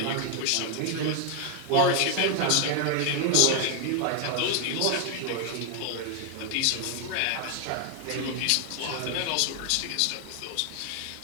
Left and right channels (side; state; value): both; different; correlation 0.00